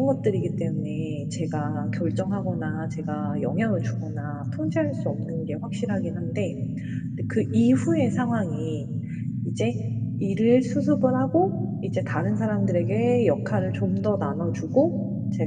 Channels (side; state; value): both; identical; correlation 1.00